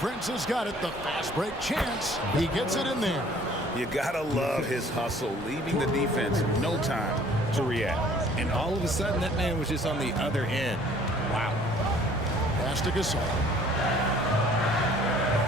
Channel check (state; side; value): normal; both; correlation 0.55